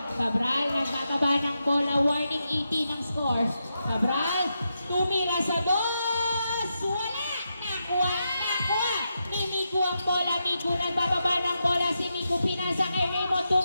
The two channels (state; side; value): inverted; both; correlation -0.86